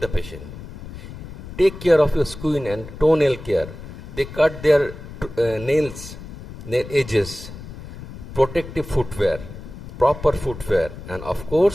the patient. Take care of your skin and toenail care. They cut their nails, nail edges, protective footwear, proper footwear, and of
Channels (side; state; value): left; noise; rumble, 13 dB below the sound